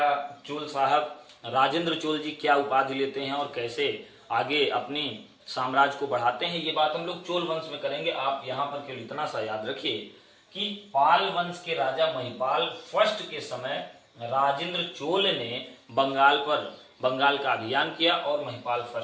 चोल साहब राजेंद्र चोल जी क्या उपाधि लेते हैं और कैसे आगे अपनी साम्राज्य को बढ़ाते हैं। ये बात हम लोग चोल वंश में करेंगे। आप यहाँ पर केवल इतना सा याद रखिए कि पाल वंश के राजा महिपाल फर्स्ट के समय राजेंद्र चोल ने बंगाल का अभियान किया और महिपाल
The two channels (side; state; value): both; identical; correlation 1.00